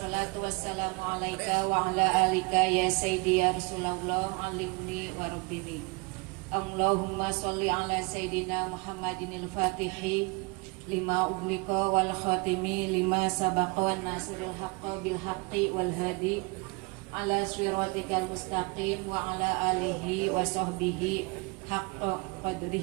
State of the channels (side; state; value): left; quieter; 28.3 dB